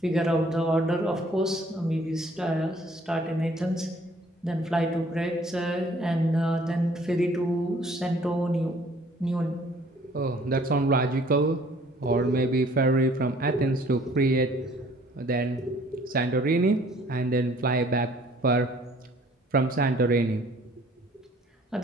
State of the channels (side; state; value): both; normal; correlation 0.57